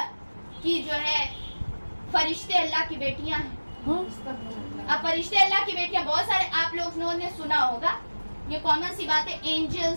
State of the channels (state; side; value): inverted; both; correlation -1.00